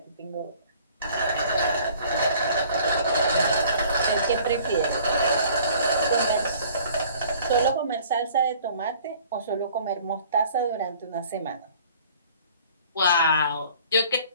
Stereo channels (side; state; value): both; inverted; correlation -0.53